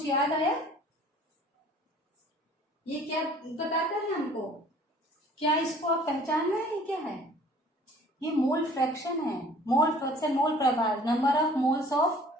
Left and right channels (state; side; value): normal; both; correlation 0.52